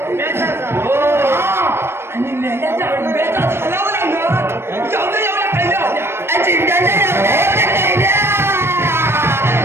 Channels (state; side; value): late; left; 0.12 ms